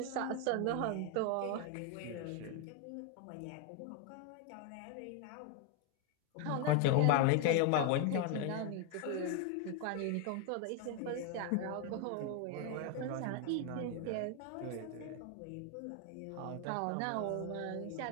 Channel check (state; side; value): different; both; correlation 0.01